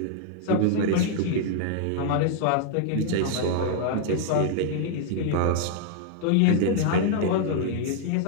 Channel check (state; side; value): different; both; correlation -0.01